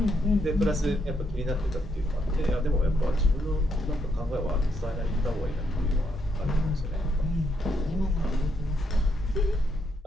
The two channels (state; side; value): normal; both; correlation 0.77